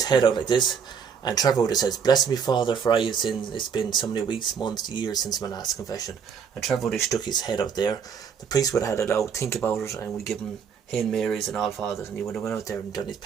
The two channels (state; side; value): quieter; left; 6.8 dB